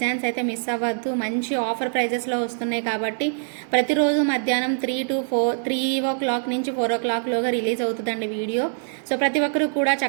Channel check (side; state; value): left; silent; digital silence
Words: అయితే మిస్ అవ్వద్దు. మంచి ఆఫర్ ప్రైజెస్లో వస్తున్నాయి కాబట్టి ప్రతిరోజు మధ్యాహ్నం 3 నుంచి 4 o'clockలోగా రిలీజ్ అవుతుందండి వీడియో. సో ప్రతి ఒక్కరు కూడా